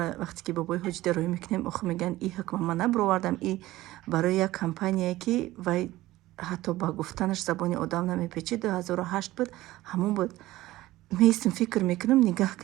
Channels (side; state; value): left; quieter; 16.9 dB